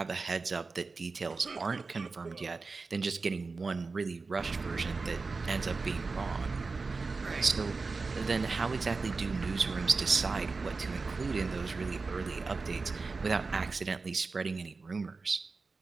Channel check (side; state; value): left; quieter; 4.1 dB